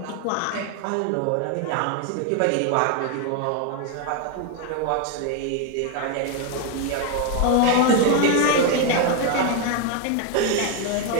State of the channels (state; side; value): different; both; correlation 0.01